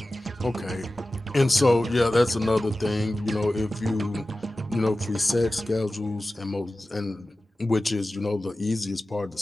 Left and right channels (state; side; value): normal; both; correlation 0.95